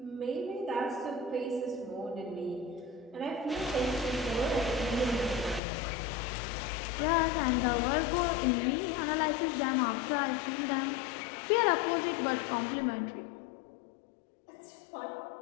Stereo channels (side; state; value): right; drops out; at 5.6 s